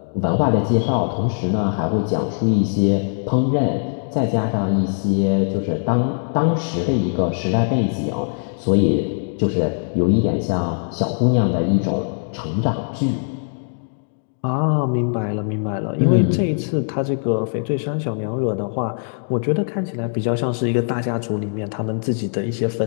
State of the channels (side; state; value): right; silent; digital silence